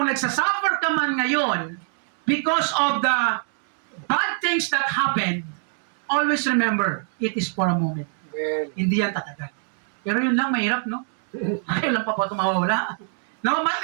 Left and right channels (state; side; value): silent; left; 57 dB below the other